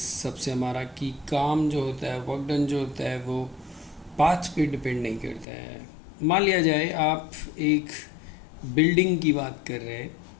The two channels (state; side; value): drops out; right; at 5.5 s